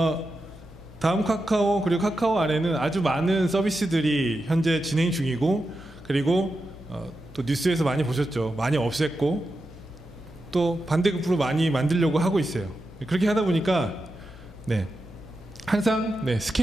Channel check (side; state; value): both; normal; correlation 0.89